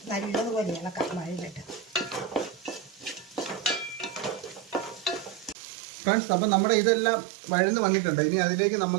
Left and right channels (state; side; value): drops out; left; at 5.6 s